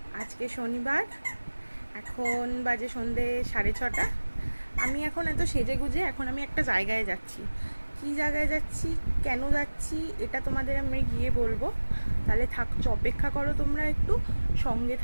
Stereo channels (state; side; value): inverted; both; correlation -1.00